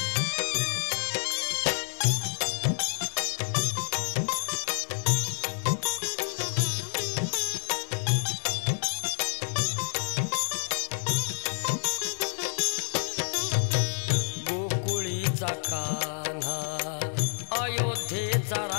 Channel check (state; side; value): silent; right; 59 dB below the other